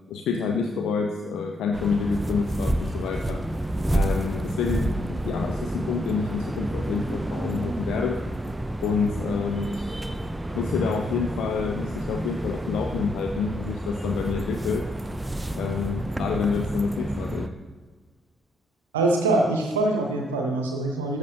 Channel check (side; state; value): both; normal; correlation 0.72